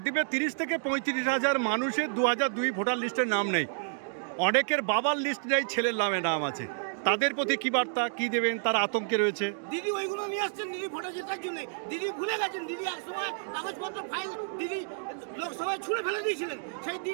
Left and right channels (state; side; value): silent; left; digital silence